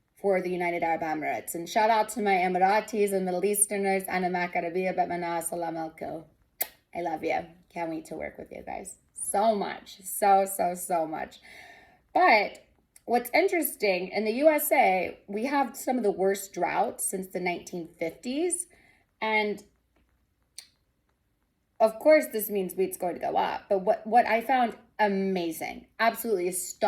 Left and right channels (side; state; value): both; identical; correlation 1.00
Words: for the United Arab Emirates. And shout out to my Emiratis and Middle Easterners. Ana makarabia batmana salam alaikum. I love you. Can't wait to work with you guys so much. So much. But what's interesting, in the USA, we have some of the worst droughts since the 1950s. And of course, this means wheat's going to go up. But what I found amazing, absolutely